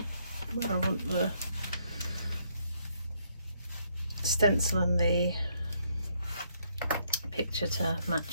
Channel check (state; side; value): inverted; both; correlation -0.72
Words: where I want the stencil and the picture to